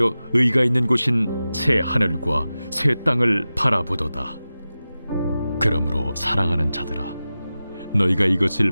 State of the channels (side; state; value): both; inverted; correlation -0.94